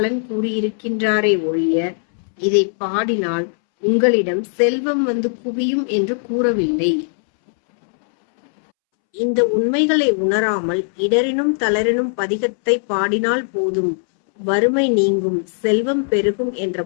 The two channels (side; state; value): right; silent; 67 dB below the other